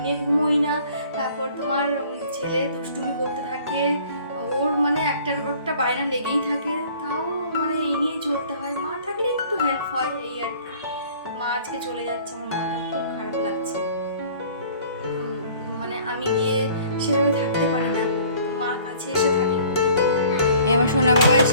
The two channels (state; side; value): inverted; both; correlation -0.52